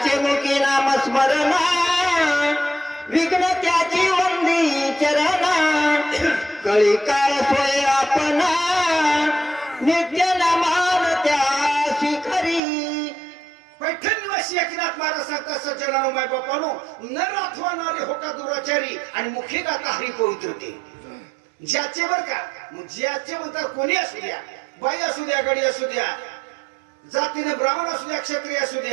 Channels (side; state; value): left; drops out; at 12.6 s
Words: मुखी नाम स्मरण विघ्न त्याची वंदी चरणा. कळी काळ सोय आपण नित्य नमान त्या शिखरी. पैठण निवासी एकनाथ महाराज सांगतात सज्जनानो माय बापानो, नर अथवा नारी होका दुराचारी आणि मुखी गाता हरी पवित्रते. ज्याचे बर का, मग ज्याचे म्हणतात कोणी असू द्या, बाई असू द्या, गडी असू द्या, जातीने ब्राह्मण असू द्या, क्षत्रिय असू